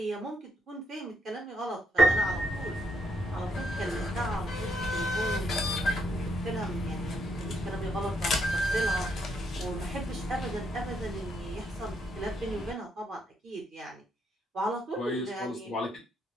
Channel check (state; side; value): normal; both; correlation 0.76